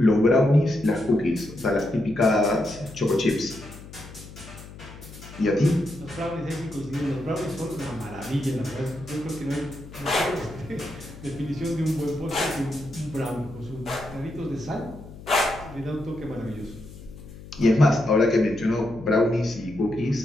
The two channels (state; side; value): noise; left; hum, 16 dB below the sound